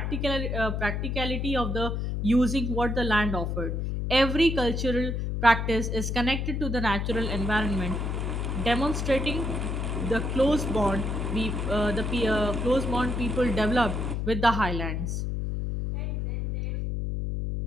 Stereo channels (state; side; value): noise; left; hum, 1 dB below the sound